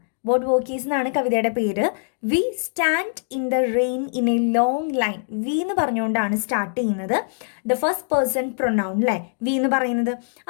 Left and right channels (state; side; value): silent; right; digital silence